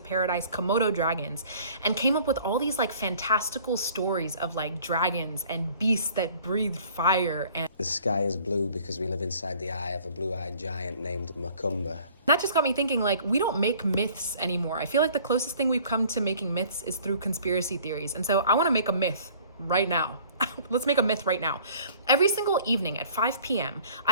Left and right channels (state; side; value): inverted; both; correlation -0.53